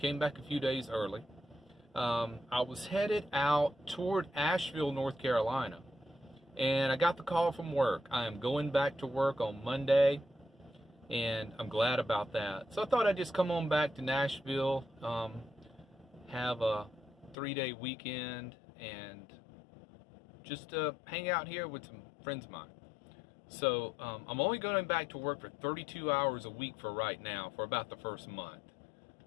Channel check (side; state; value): right; drops out; at 17.4 s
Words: back a few days early. I was headed out toward Asheville, North Carolina, and I got the call from work. I am going back to work on Monday, and I'm glad about that. So I thought I'd just come on back to Nashville, have a 3-day weekend, and just hang out here with some friends of mine. So I'm only going back to work for 32 hours a week for right now, for about the first month.